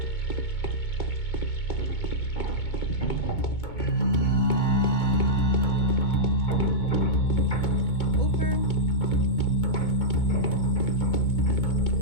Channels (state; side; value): late; right; 2.2 ms